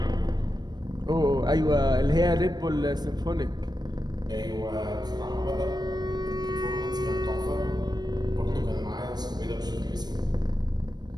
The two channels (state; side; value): late; left; 0.20 ms